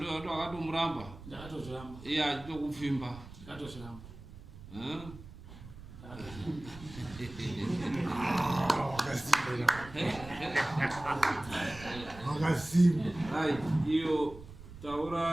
akatomuramba ndakatozviramba iye achitokufimba ndakatozviramba Wakasimba. Hai, iyo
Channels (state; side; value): noise; right; rumble, 16 dB below the sound